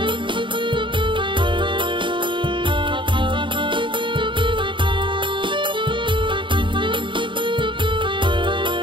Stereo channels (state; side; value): late; left; 0.24 ms